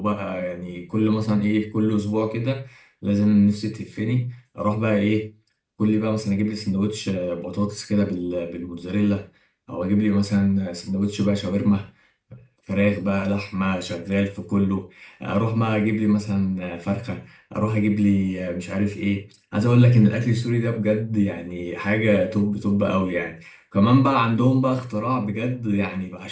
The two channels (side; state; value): both; identical; correlation 1.00